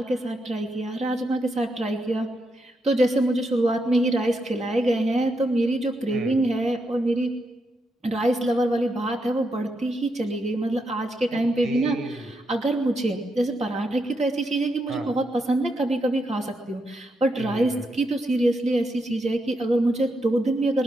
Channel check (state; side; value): normal; both; correlation 0.82